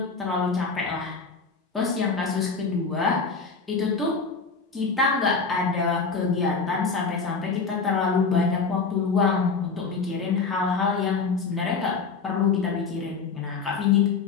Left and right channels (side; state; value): right; quieter; 4.8 dB